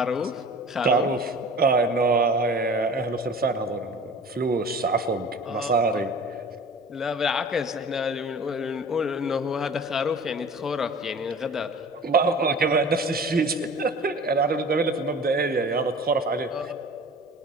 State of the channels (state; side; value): normal; both; correlation 0.41